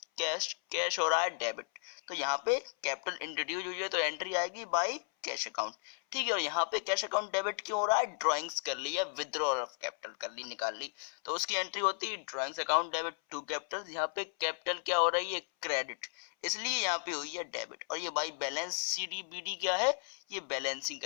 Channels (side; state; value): right; silent; 55 dB below the other